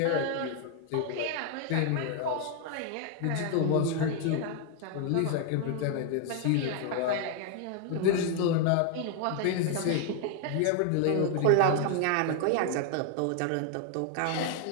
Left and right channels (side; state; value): both; different; correlation 0.00